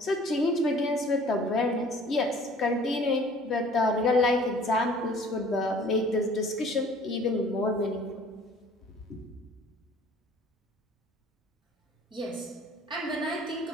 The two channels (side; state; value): both; normal; correlation 0.52